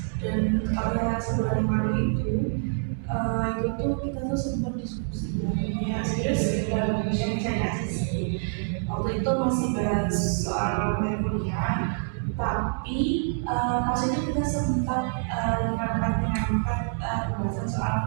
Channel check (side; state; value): left; silent; digital silence